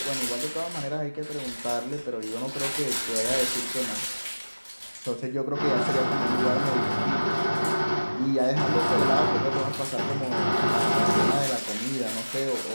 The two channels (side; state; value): both; inverted; correlation -1.00